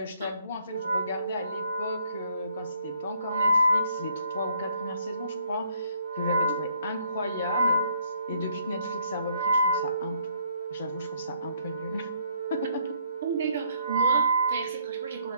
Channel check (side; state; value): both; inverted; correlation -0.67